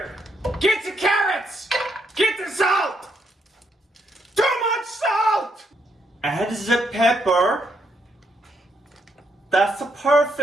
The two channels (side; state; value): both; normal; correlation 0.76